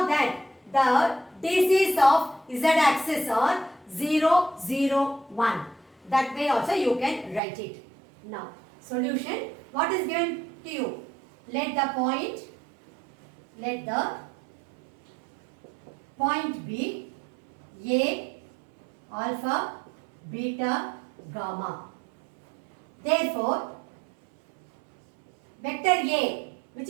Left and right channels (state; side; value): drops out; left; at 7.4 s